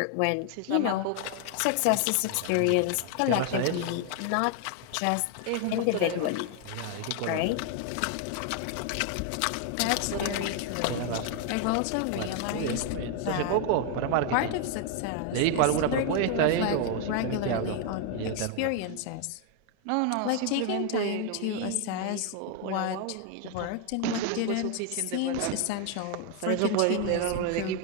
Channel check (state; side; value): different; both; correlation 0.00